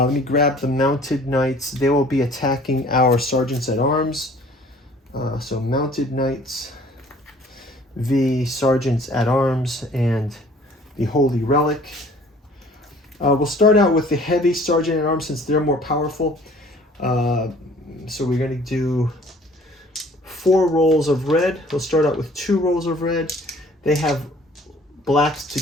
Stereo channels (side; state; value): both; normal; correlation 0.53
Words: me grab the mounted knights. They will be attacking our sergeants at arms. So mounted knights, v sergeants at arms, and the holy relic. We'll start out with the heavy sergeant at arms since they're more powerful. So we're going to do 4 rolls of red. We'll start out with 2 rolls of red. They have blacks